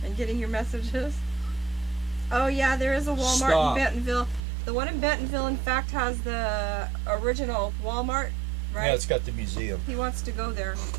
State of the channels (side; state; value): left; drops out; at 4.4 s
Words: in getting your messages. Oh yeah, there is a Walmart Stop. in Bentonville. The one in Bentonville, in fact, has the original Walmart, right? Yeah, it's got the museum. He wants to go there.